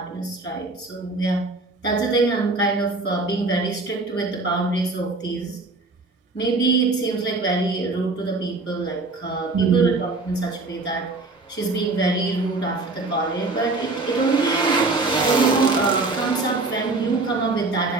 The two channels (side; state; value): left; quieter; 3.4 dB